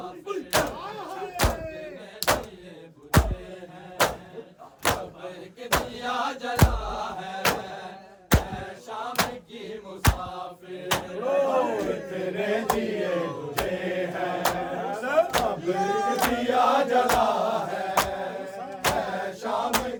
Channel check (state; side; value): identical; both; correlation 1.00